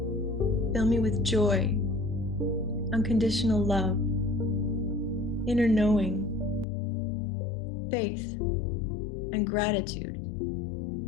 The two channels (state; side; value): drops out; right; at 6.7 s